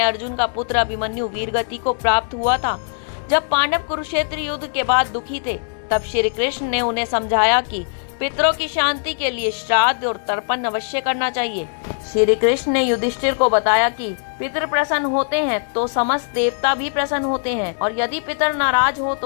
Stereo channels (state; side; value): silent; right; digital silence